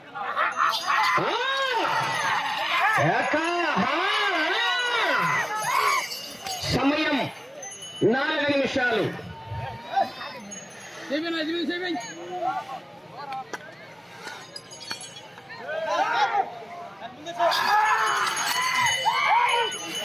సమయం 4 నిమిషాలు.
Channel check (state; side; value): identical; both; correlation 1.00